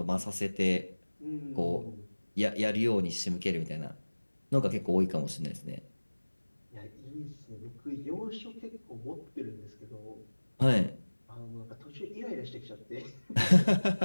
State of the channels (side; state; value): both; inverted; correlation -1.00